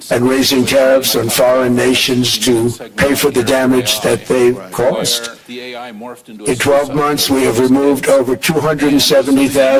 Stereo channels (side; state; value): both; identical; correlation 1.00